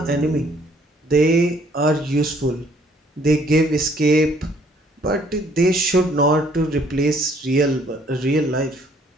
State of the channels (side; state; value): both; normal; correlation 0.62